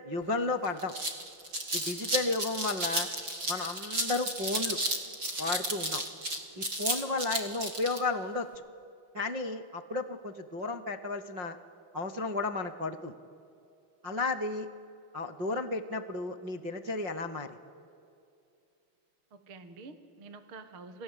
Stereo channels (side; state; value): left; late; 5.9 ms